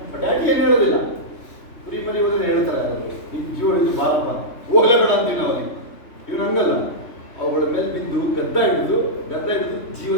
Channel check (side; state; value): right; late; 3.2 ms